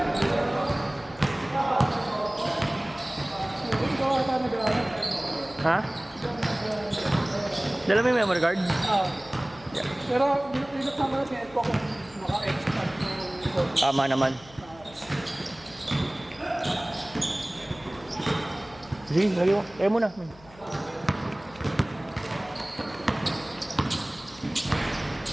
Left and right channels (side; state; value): left; noise; hum, 23 dB below the sound